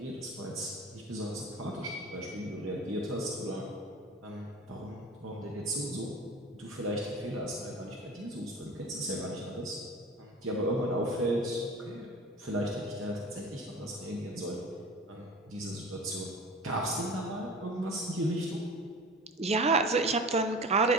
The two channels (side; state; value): both; normal; correlation 0.38